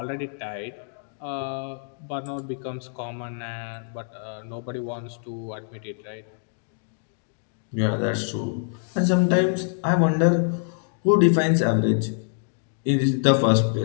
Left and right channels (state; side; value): silent; right; digital silence